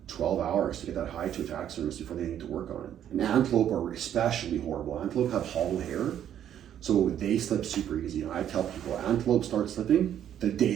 12 hours to get that hide to a taxidermist before they need to work on it. And antelope are especially horrible. Antelope have hollow hair, so they slip super easy. And I tell people, antelope start slipping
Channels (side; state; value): left; quieter; 10.2 dB